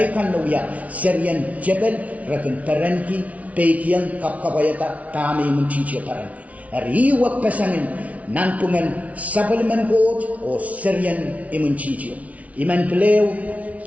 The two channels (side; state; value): left; late; 0.068 ms